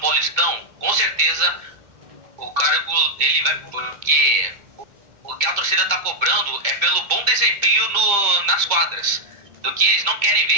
Paulistão, com certeza o cargo dele vai... Porque o que a torcida está cobrando é pelo bom desempenho nas quadras. Do que eles não querem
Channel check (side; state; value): left; late; 2.2 ms